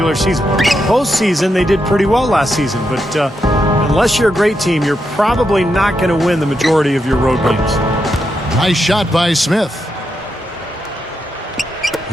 season. Postseason, they did pretty well last season. But unless you're a great team, you're probably not going to win the majority of your road games. Nice shot by Smith.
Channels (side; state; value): both; normal; correlation 0.83